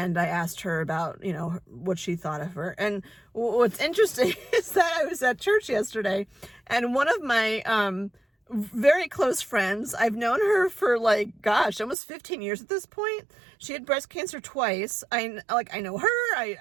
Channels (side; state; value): left; drops out; at 12.0 s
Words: I asked her about, you know, what she thought of her. And what's interesting is that I was at church yesterday, and one of my very close friends, I've known her for like, gosh, almost 15 years at this point. She had breast cancer twice. I know her,